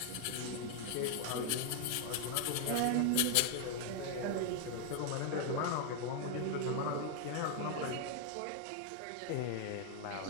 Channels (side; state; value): both; different; correlation 0.00